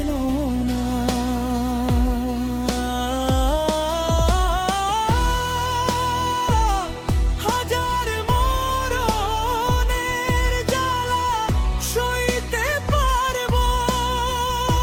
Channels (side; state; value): both; identical; correlation 1.00